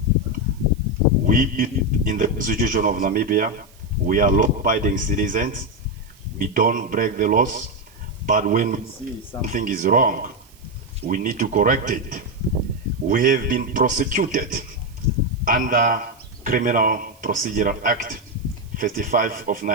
We, in the Constitution of Namibia, we are law-abiding citizens. We don't break the laws, but when we see something is wrong, we need to correct it. We have been prosecuted under Criminal Procedural Act 35 of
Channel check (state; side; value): noise; right; hiss, 28 dB below the sound